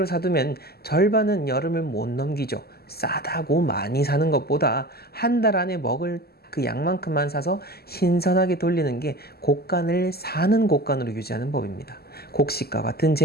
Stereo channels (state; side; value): late; right; 0.46 ms